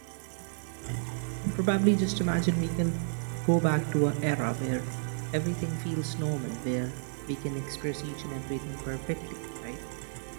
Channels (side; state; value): left; silent; digital silence